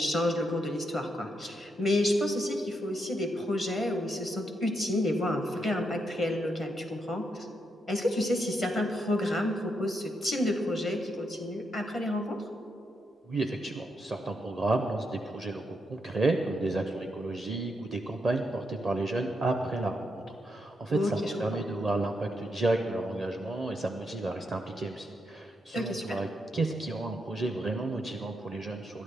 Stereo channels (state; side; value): normal; both; correlation 0.81